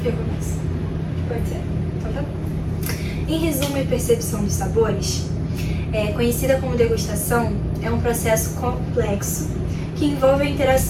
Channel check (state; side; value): identical; both; correlation 1.00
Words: Eu começo. Pode ser? Então tá bom. Em resumo e percepção dos sabores, conhecida como degustação, é um processo complexo que envolve a